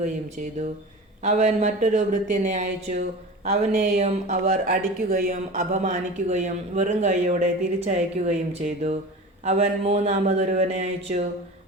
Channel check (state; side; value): normal; both; correlation 0.33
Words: ചെയ്തു. അവൻ മറ്റൊരു ഭൃത്യനെ അയച്ചു. അവനെയും അവർ അടിക്കുകയും അപമാനിക്കുകയും വെറും കൈയോടെ തിരിച്ചയക്കുകയും ചെയ്തു. അവൻ മൂന്നാമതൊരുവനെ അയച്ചു.